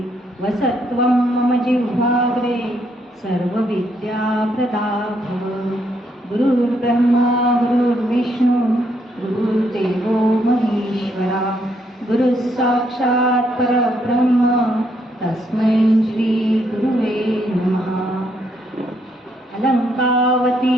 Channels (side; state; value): both; normal; correlation 0.74